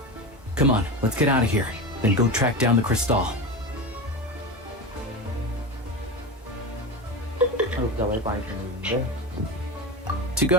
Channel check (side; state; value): both; normal; correlation 0.22